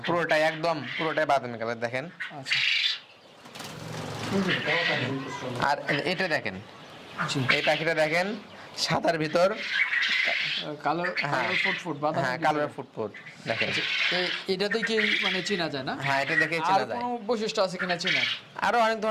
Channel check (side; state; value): both; identical; correlation 1.00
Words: পুরোটাই একদম পুরোটাই বাদামি কালার দেখেন। আচ্ছা। আর এটা দেখেন, জি। এই পাখিটা দেখেন সাদার ভিতর কালার হ্যাঁ। ফুট বাদামি। হ্যাঁ কালার ফুটফুট দেখেন। এটা দেখে মানে চেনা যায় না? হ্যাঁ এটা দেখে আর চেনা যায়। কোনো বৈশিষ্ট্য আছে কিনা চেনা? আরো অনেক